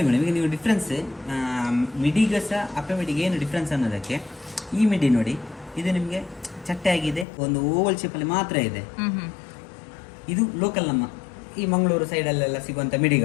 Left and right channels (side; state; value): right; drops out; at 7.2 s